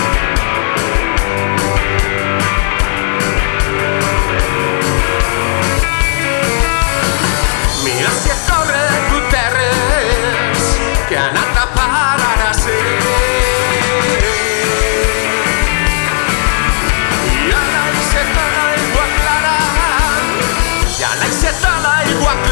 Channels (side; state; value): right; silent; digital silence